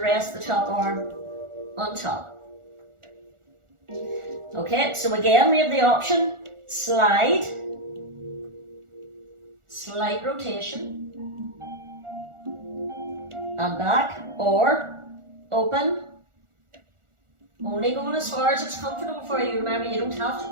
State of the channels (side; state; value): left; late; 1.4 ms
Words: rest the top arm on top. Okay, so again we have the option, slide, slight rotation, and back, or open, only going as far as it's comfortable for you. Remember, you don't have to